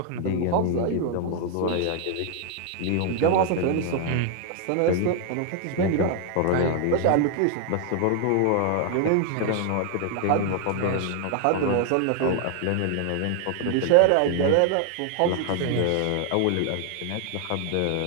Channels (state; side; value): different; both; correlation 0.00